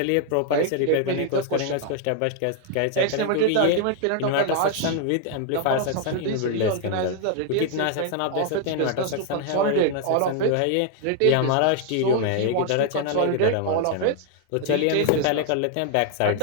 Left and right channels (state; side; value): different; both; correlation 0.00